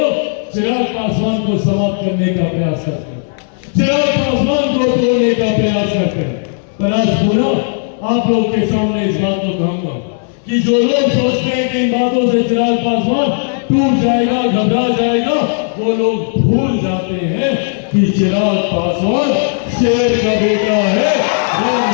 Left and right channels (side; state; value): right; silent; digital silence